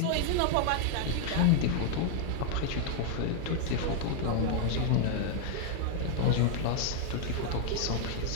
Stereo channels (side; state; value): both; different; correlation 0.00